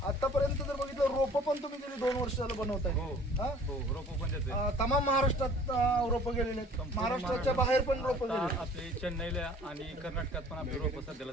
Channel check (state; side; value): normal; both; correlation 0.50